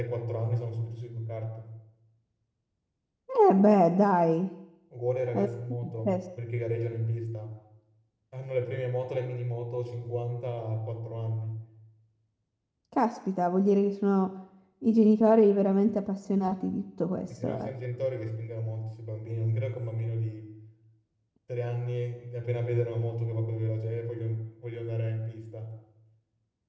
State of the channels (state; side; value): identical; both; correlation 1.00